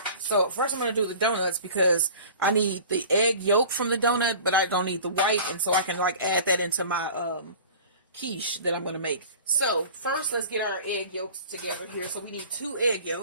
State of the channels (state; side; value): inverted; both; correlation -0.41